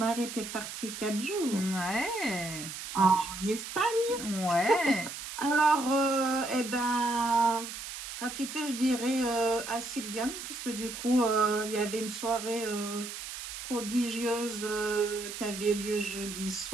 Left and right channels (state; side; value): noise; right; hiss, 9 dB below the sound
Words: était parti 4 jours Ouais. en Espagne. Ouais. Alors, eh ben, gratitude, je dirais à Sylviane, parce que du coup, il y avait une soirée prodigieuse qui avait lieu jeudi